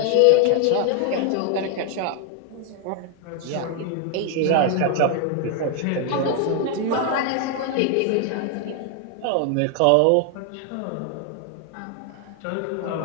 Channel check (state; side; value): different; both; correlation 0.00